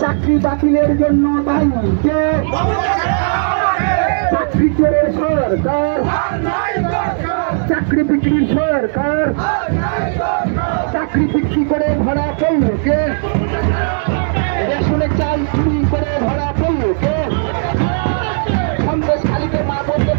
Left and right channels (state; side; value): silent; left; digital silence